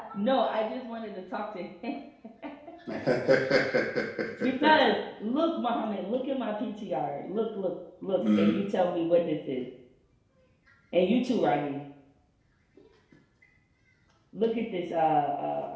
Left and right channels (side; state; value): both; identical; correlation 1.00